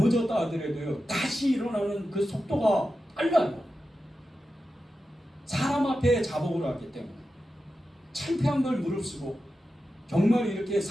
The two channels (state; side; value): normal; both; correlation 0.91